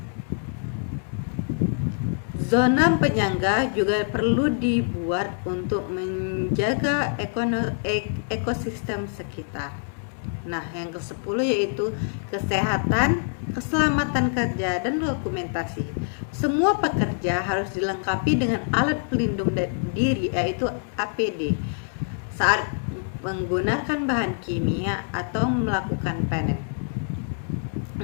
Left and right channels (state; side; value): silent; right; digital silence